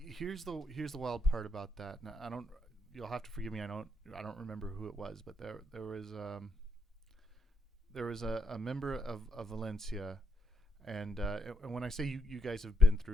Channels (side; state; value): both; normal; correlation 0.77